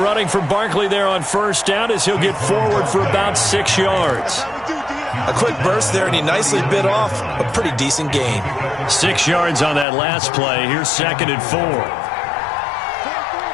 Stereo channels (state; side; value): drops out; right; at 9.9 s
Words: from Barkley there on first down as he'll get forward for about 6 yards. A quick burst there, and he nicely bit off a pretty decent gain. 6 yards on that last play. Here's 2nd and 4.